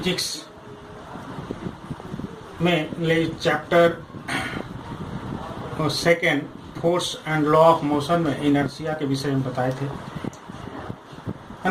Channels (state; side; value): identical; both; correlation 1.00